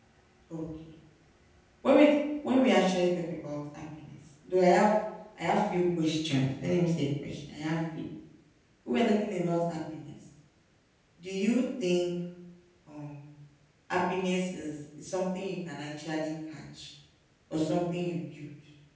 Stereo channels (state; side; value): identical; both; correlation 1.00